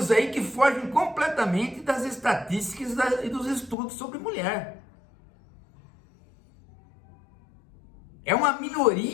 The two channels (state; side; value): drops out; right; at 3.8 s